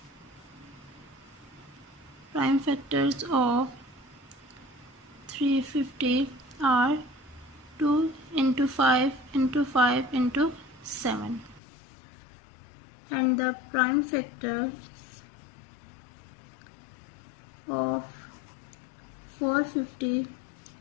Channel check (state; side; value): drops out; right; at 11.6 s